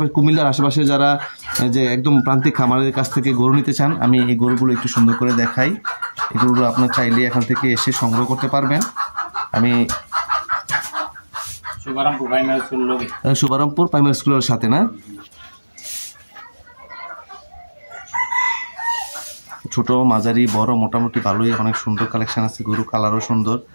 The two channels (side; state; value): both; inverted; correlation -1.00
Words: কুমিল্লার আশেপাশে যারা যে একদম প্রান্তিক খামারের কাছ থেকে গরু নিতে চান, আমি এই গরুগুলো একটু সুন্দর করে দেখাই। এই গরুগুলো আপনার চাইলে এখান থেকে এসে সংগ্রহ করতে পারবেন। আমি শুভারামপুর প্রাইমারি স্কুলের সাথে না, ছোট মাঝারি বড় মোটামুটি ভালোই অনেক সুন্দর কালেকশন আছে গরু। কালারও সুন্দর,